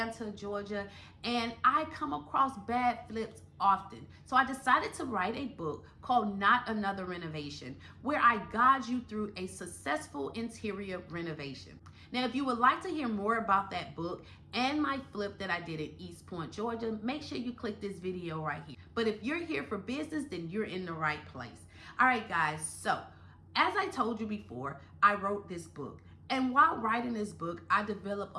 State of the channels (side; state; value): both; identical; correlation 1.00